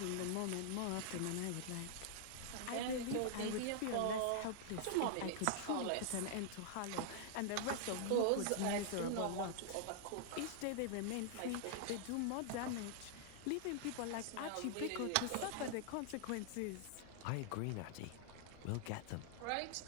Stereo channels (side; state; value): both; different; correlation -0.01